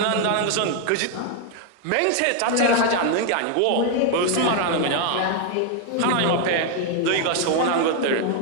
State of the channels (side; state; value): both; different; correlation 0.00